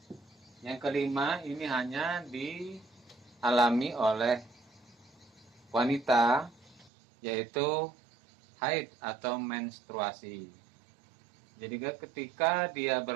ini hanya alami oleh wanita, yaitu haid atau menstruasi. Jadi ketika dia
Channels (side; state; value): left; drops out; at 6.9 s